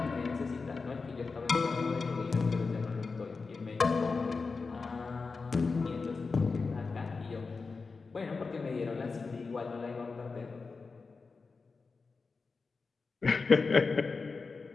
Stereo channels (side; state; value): right; quieter; 4.4 dB